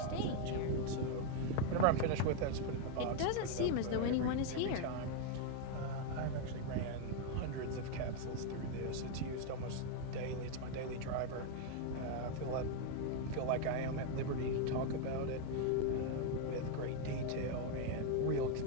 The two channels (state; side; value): different; both; correlation 0.01